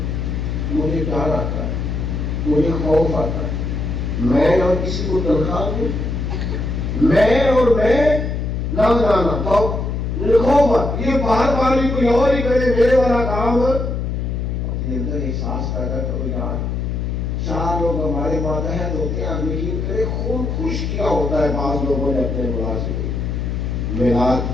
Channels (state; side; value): noise; left; hum, 2 dB below the sound